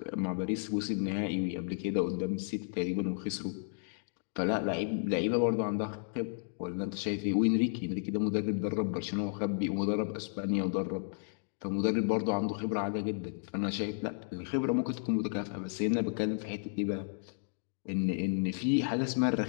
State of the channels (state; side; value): silent; right; digital silence